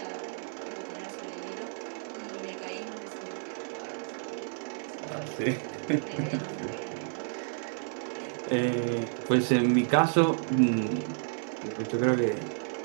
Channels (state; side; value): silent; left; digital silence